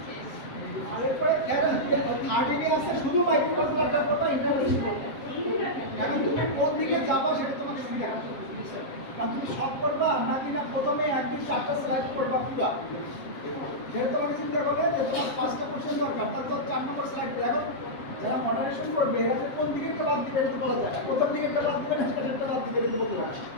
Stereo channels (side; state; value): right; late; 7.7 ms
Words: আর এরপরে থার্ড এরিয়া আছে শুধু মাইক্রোকন্ট্রোলারটার কথা ইন্টারফেস করবে এখন তুমি কোন দিকে যাবা সেটা তোমাকে সুবিধা হবে কারণ তুমি সব করবা নাকি না প্রথমে একদিন 4টা স্লাইড করবা পুরো যেহেতু তোমাকে চিন্তা করবে যে তোমার 5টা কোশ্চেন দরকার তার তো 4 নম্বর স্লাইড দেখো যারা মডারেশন করবে এরা যে কোন দিকে বাদ দিবে এটা বলা যায় প্রথম দিকে বাদ দিবে না সেটা বাদ দিবে এটা বলতে পারে